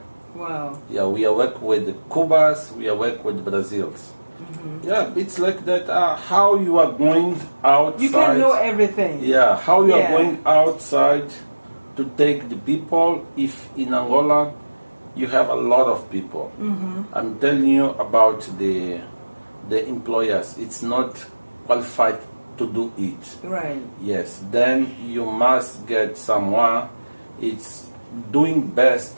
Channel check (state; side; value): inverted; both; correlation -1.00